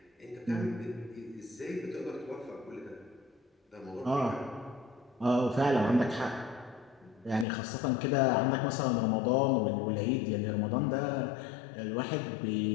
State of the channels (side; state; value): right; drops out; at 7.5 s